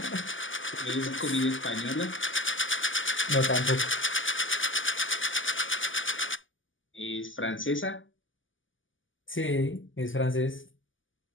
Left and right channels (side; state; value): right; late; 0.57 ms